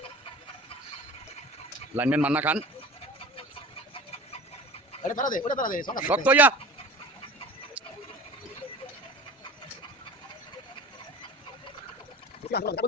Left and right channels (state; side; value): normal; both; correlation 0.38